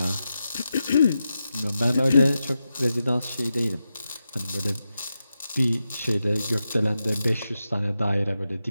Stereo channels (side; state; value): both; inverted; correlation -0.89